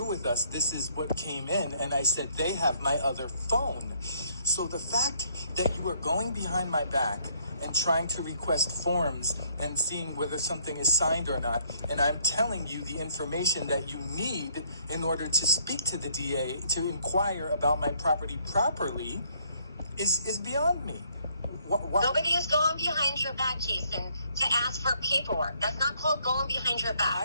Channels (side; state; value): both; inverted; correlation -0.67